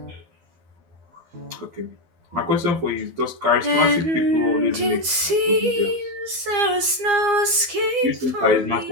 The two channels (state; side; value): late; left; 12 ms